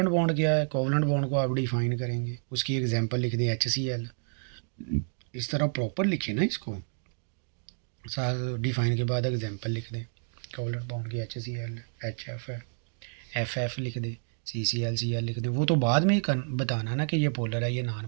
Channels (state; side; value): silent; left; digital silence